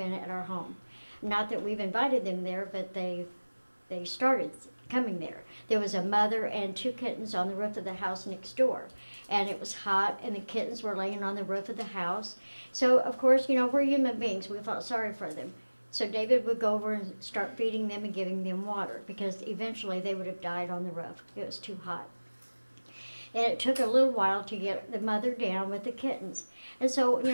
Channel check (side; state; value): both; inverted; correlation -1.00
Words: at our home. Not that we've invited them there, but they started coming there. There was a mother and 2 kittens on the roof of the house next door. And it was hot, and the kittens were laying on the roof of the house. So, of course, you know, we're human beings. We felt sorry for them. So David would go over and start feeding them and giving them water, because eventually they would have died on the roof. It was too hot. And it took a little while to get the mother down with the kittens. And so, you